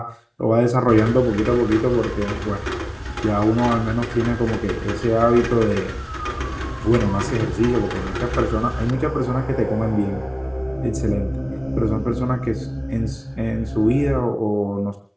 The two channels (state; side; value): identical; both; correlation 1.00